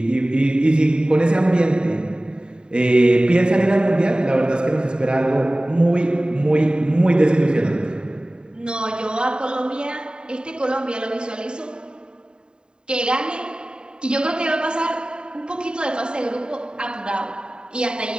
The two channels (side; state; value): left; late; 0.048 ms